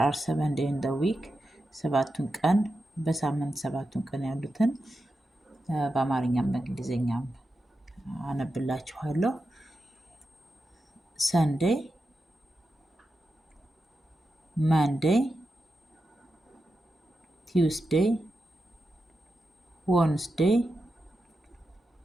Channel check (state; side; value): normal; both; correlation 0.89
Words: are 7 days in the week ሰባቱን ቀን በሳምንት ሰባቱን ቀን ያሉትን በአማርኛም በእንግሊዘኛም አነብላችኋለሁ። Sunday, Monday, Tuesday, Wednesday,